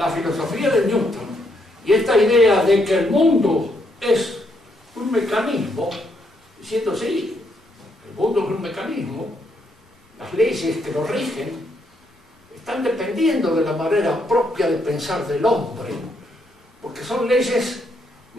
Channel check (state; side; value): normal; both; correlation 0.76